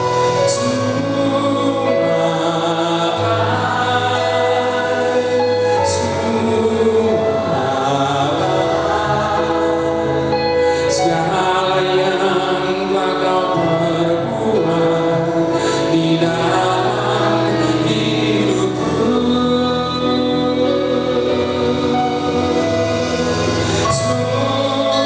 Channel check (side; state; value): both; identical; correlation 1.00